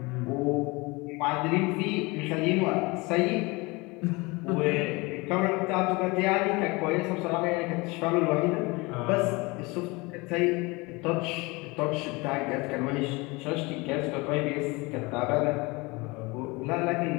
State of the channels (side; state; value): right; quieter; 25.0 dB